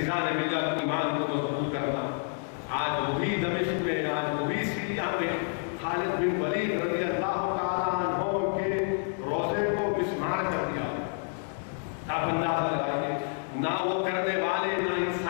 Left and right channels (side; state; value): right; silent; 58 dB below the other